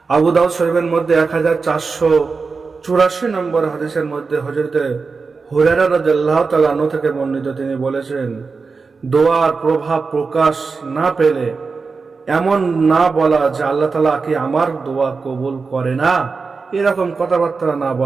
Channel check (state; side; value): quieter; left; 4.6 dB